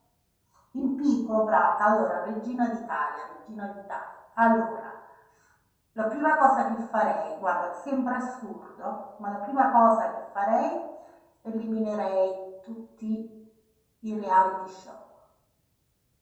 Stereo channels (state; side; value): identical; both; correlation 1.00